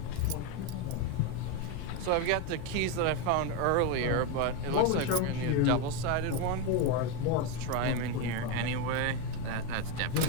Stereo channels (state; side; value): different; both; correlation 0.04